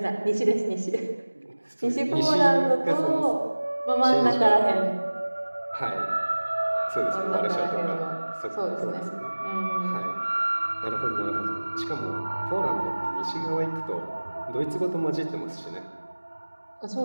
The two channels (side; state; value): both; inverted; correlation -1.00